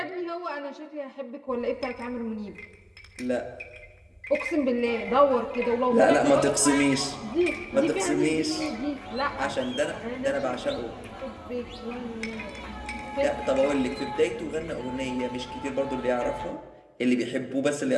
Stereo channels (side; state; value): both; identical; correlation 1.00